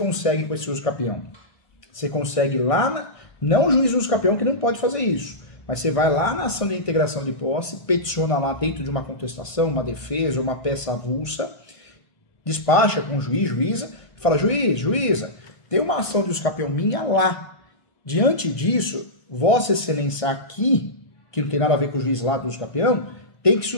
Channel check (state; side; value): late; right; 1.6 ms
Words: com esse uso capião? Você consegue lá, não o juiz do uso capião que não pode fazer isso, mas você vai lá na ação de integração de posse, peticiona lá dentro de uma contestação, uma defesa, uma peça avulsa, despacha com o juiz, juíza, fala, juiz, juíza, tem uma ação de uso capião minha lá. Diante disso, Vossa Excelência aqui, que não tem nada a ver com o juiz lá do uso capião, tem que